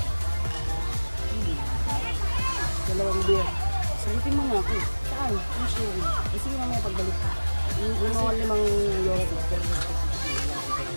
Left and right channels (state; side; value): inverted; both; correlation -1.00